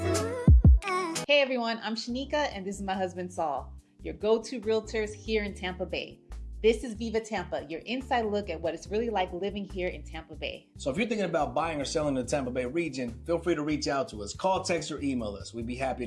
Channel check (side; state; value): both; identical; correlation 1.00